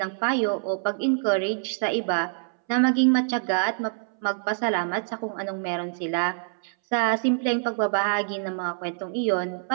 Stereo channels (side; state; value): left; silent; 61 dB below the other